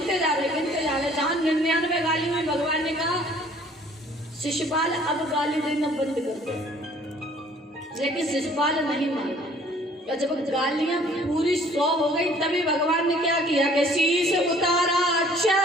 जा रहे। जहां 99 गालियों में भगवान ने कहा शिशुपाल अब गाली देना बंद कर दो, लेकिन शिशुपाल नहीं माना। तो जब गालियां पूरी 100 हो गई तभी भगवान ने क्या किया कि शीश उतारा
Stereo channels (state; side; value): normal; both; correlation 0.56